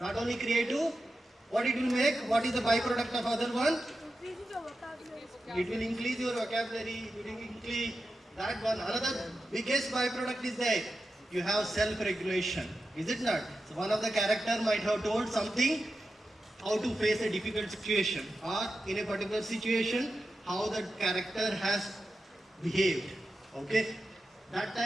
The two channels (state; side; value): normal; both; correlation 0.91